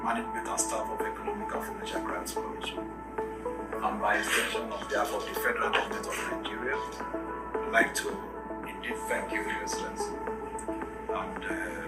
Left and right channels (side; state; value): both; identical; correlation 1.00